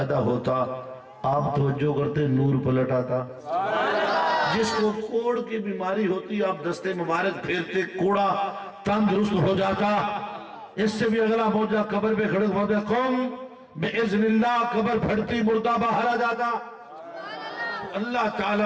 ہوتا، آپ توجہ کرتے نور پلٹ آتا. جس کو کوڑ کی بیماری ہوتی آپ دستے مبارک پھیرتے، کوڑا تندرست ہو جاتا. اس سے بھی اگلا معجزہ، قبر پہ کھڑے ہوتے قوم بِإِذْنِ اللہ، قبر پھٹتی، مردہ باہر آ جاتا. اللہ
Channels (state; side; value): identical; both; correlation 1.00